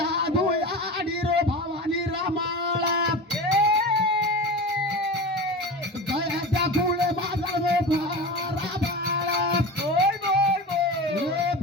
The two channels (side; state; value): both; normal; correlation 0.29